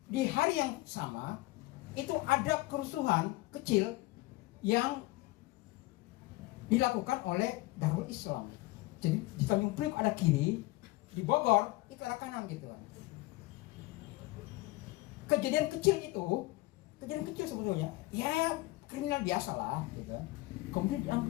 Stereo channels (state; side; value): quieter; right; 20.1 dB